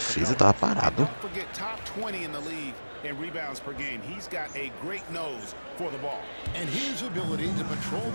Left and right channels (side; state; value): both; inverted; correlation -1.00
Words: tava parado. Don't forget top 20 in the league in rebounds per game. He's got a great nose for the ball. And his ability to patrol